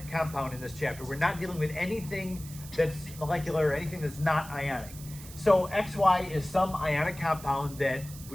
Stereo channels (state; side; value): noise; right; hiss, 16 dB below the sound